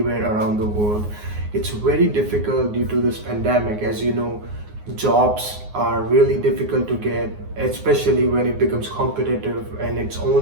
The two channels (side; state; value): left; late; 9.6 ms